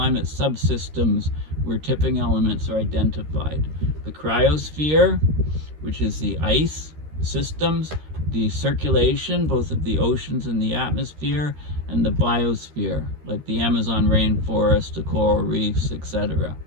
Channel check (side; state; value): left; late; 13 ms